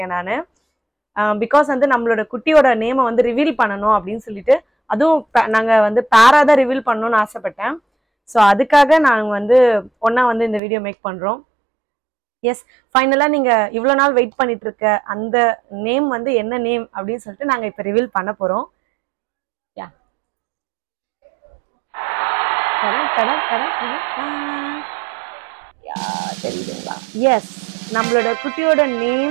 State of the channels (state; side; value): drops out; left; at 10.6 s